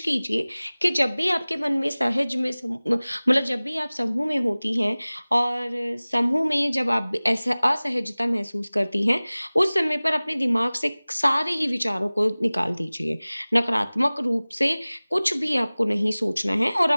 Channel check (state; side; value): inverted; both; correlation -0.99